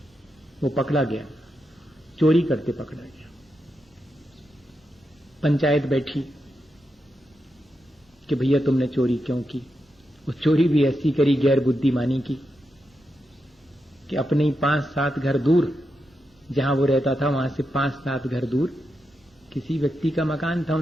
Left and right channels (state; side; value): normal; both; correlation 0.86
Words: वो पकड़ा गया, चोरी करते पकड़ा गया। पंचायत बैठी कि भैया तुमने चोरी क्यों की। वो चोरी भी ऐसी करी गैर बुद्धिमानी की कि अपने ही 5-7 घर दूर, जहां वो रहता था वहां से 5-7 घर दूर किसी व्यक्ति का मकान था,